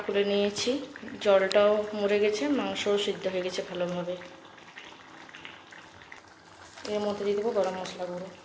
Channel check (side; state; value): both; identical; correlation 1.00